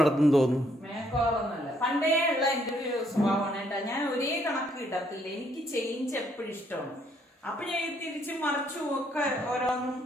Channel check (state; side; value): normal; both; correlation 0.70